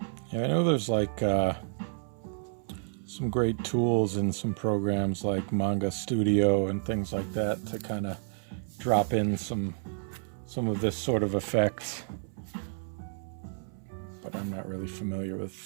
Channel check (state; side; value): silent; left; 58 dB below the other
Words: Yeah, I know there's like some great tools in some programs like Manga Studio and things like that to kind of drop in some of this sort of effects, but I'm not really familiar